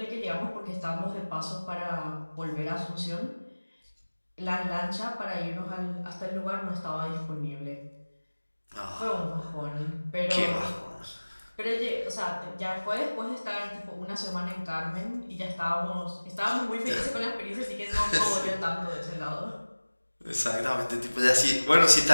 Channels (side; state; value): both; inverted; correlation -1.00